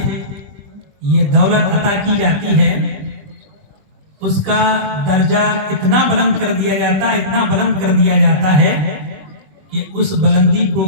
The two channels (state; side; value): late; left; 21 ms